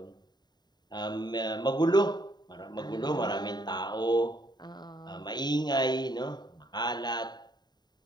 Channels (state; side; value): late; right; 0.20 ms